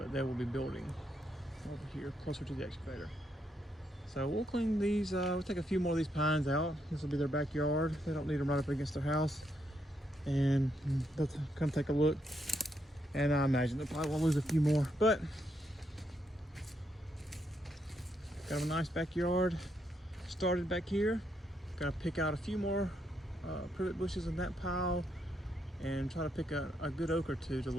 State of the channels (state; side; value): normal; both; correlation 0.78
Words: they will be building over here closer to the excavator. So we'll clean these, we'll take a few more of these pines out. This will be their backyard. They don't need them right up against their house. And they'll come take a look. And I imagine they'll probably will lose a few more, but got a nice backyard started back here. Gotta pick out a few more privet bushes in that pile and try to pick a good oak or two to